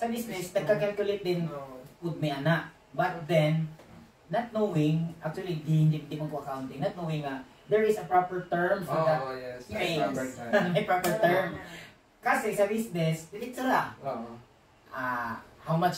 business, nagka-calculate din would may anak. But then, not knowing, actually, hindi mo ko accounting, not knowing there is a proper term for that. Oh, yes. May, Proper time. may proper term. Kasi sa business, diretso lang. Oo. How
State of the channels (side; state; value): both; identical; correlation 1.00